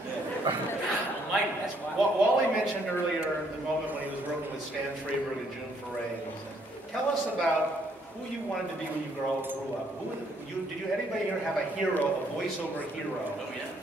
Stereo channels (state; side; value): normal; both; correlation 0.68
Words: Mike, that's why. Wally mentioned earlier the moment when he was working with Stan Freberg and June Foray. And he said, "Tell us about who you wanted to be when you grew up. Did anybody here have a hero, a voiceover hero?" Oh, yeah.